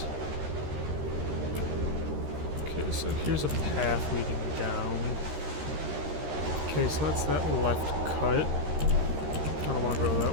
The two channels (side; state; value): left; late; 13 ms